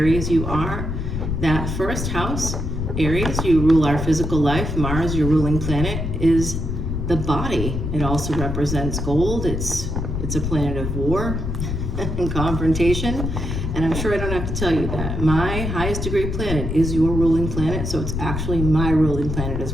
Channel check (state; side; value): noise; left; rumble, 3 dB below the sound